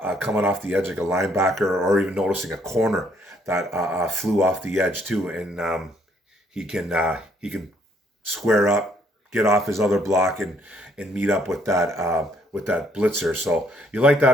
Coming off the edge like a linebacker, or even noticing a corner that flew off the edge too, and he can square up, get off his other block, and meet up with that blitzer. So you like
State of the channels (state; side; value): normal; both; correlation 0.67